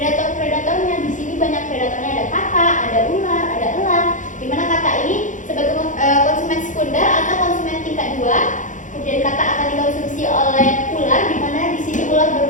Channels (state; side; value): late; right; 0.37 ms